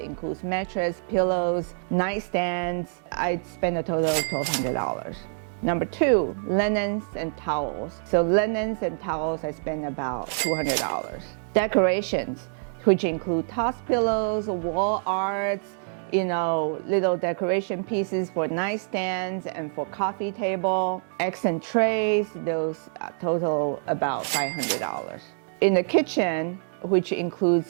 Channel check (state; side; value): silent; left; 61 dB below the other